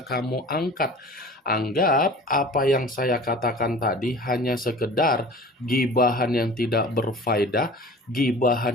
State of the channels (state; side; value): normal; both; correlation 0.42